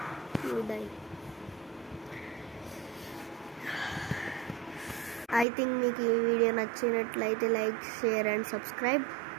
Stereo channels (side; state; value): left; drops out; at 5.5 s